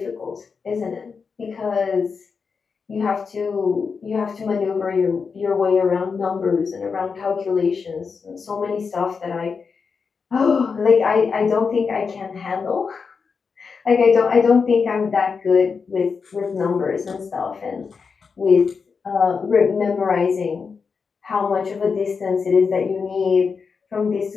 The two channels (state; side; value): quieter; right; 5.4 dB